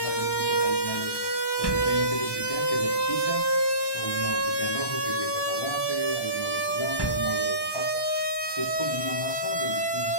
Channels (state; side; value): late; right; 1.1 ms